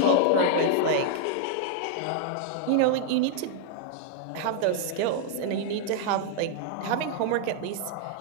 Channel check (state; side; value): different; both; correlation -0.01